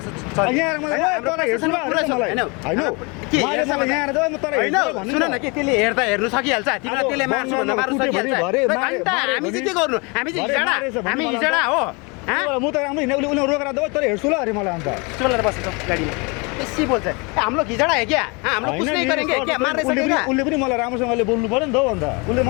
यहाँ मलाई तँलाई हेर्छु होइन के यहाँ त म तँलाई होइन सुन न के त्यसले हेर्दा हेर्नु सकिहाल्छ तिमीलाई त्यसले मार्छु भन्दा मार्नु सकिहाल्छ हामी चाहिँ के गर्नु हामी चाहिँ हिजडा हो म त राम्रो हिँड्ने उसले रोकेर दो तँले हेर्छु ल अरे मलाई अन्त चलेर बसेछ गाडीमा बेसी बोल्छ हम लोग हिजडा है क्या हम लोग कुछ नहीं करेंगे क्या मार्ने सकेगा उसले पनि मलाई राम्रोसँगले बोल्नु पर्यो नि त अन्त उसले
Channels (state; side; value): quieter; right; 29.7 dB